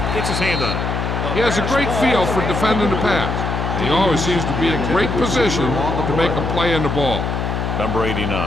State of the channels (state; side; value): noise; left; hum, 2 dB below the sound